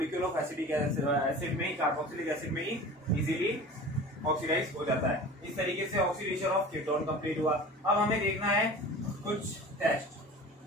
of acetic acid में ही, कार्बोक्सिलिक एसिड में ही इजीली ऑक्सीडाइज हो जाता है। इस तरीके से ऑक्सीडेशन ऑफ कीटोन कंप्लीट हुआ। अब हमें देखना है कुछ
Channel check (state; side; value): normal; both; correlation 0.38